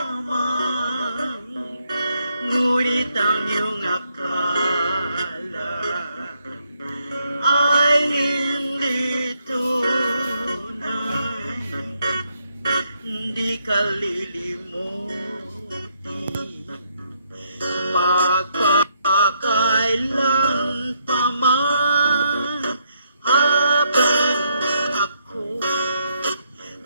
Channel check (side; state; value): both; inverted; correlation -0.75